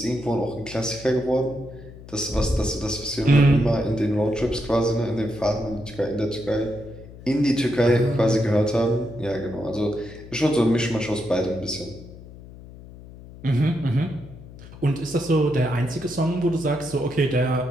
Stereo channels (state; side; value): noise; left; hum, 17 dB below the sound